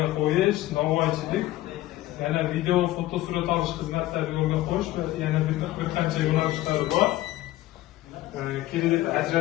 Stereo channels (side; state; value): right; quieter; 15.9 dB